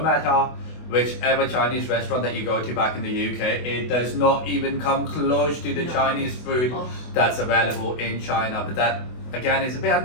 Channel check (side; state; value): right; late; 24 ms